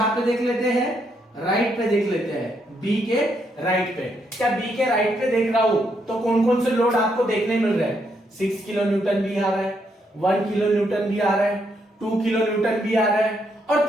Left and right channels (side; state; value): both; normal; correlation 0.76